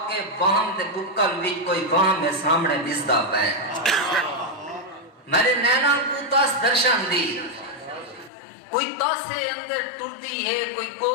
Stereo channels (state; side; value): drops out; right; at 8.3 s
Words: کے باہم دے بکل وچ کوئی باہم ہے سامنے دسدا پے۔ میرے نینا کو تاس درشن دی، کوئی تاسے اندر ٹردی ہے، کوئی